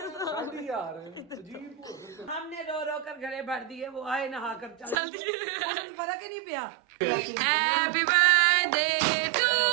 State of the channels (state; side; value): drops out; left; at 5.0 s